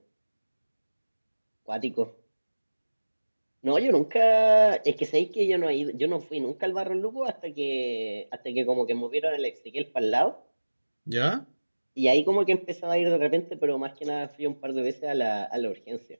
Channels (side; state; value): both; inverted; correlation -1.00